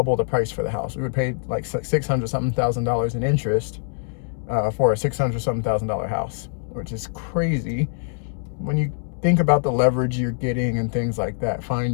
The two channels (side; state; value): right; silent; digital silence